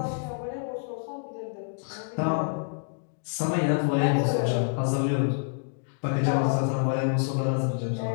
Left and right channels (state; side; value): silent; right; digital silence